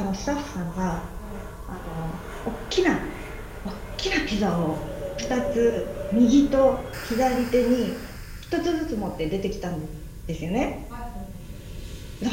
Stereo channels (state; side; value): identical; both; correlation 1.00